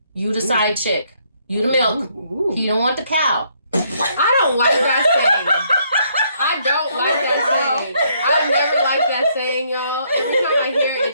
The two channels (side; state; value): both; inverted; correlation -0.70